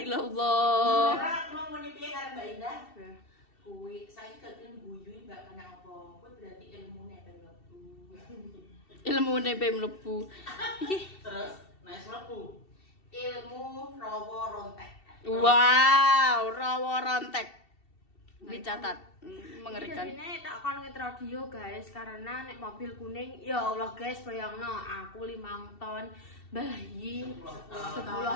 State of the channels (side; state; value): right; late; 2.7 ms